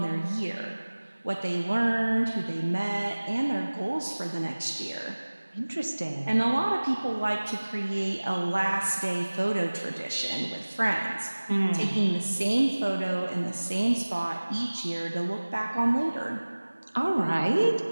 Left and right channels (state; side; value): inverted; both; correlation -1.00